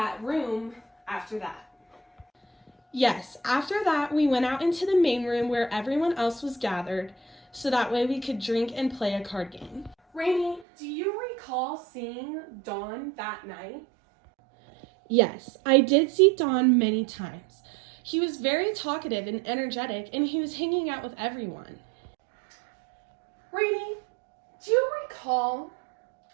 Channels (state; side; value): drops out; left; at 10.7 s